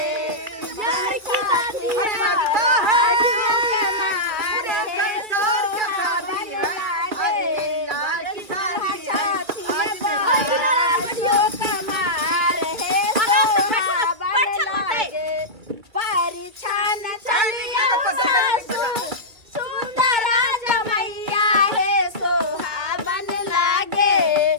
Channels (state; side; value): late; left; 2.6 ms